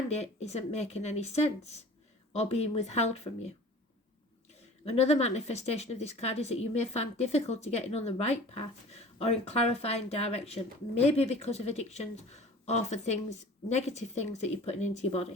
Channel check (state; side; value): normal; both; correlation 0.43